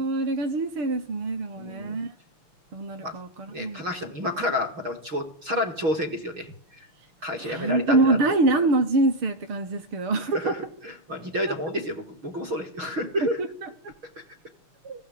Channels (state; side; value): late; left; 6.3 ms